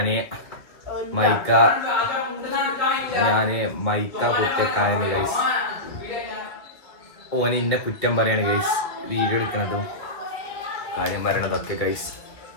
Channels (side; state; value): right; late; 1.8 ms